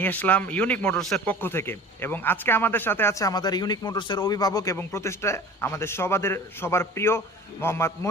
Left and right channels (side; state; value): both; normal; correlation 0.41